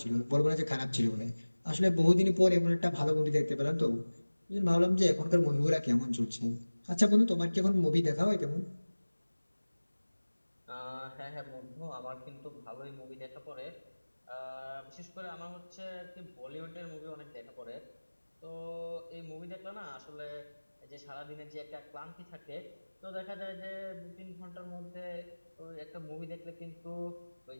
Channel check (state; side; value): inverted; both; correlation -1.00